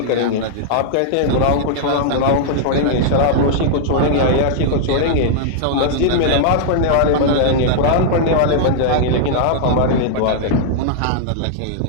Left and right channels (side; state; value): both; different; correlation -0.01